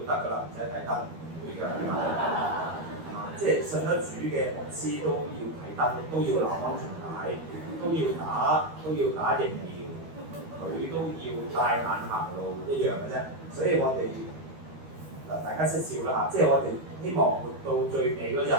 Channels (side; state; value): left; late; 12 ms